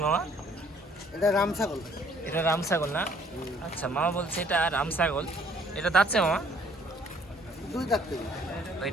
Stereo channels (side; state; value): both; normal; correlation 0.60